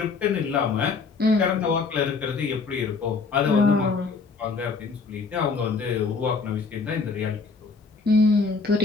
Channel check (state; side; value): quieter; right; 4.5 dB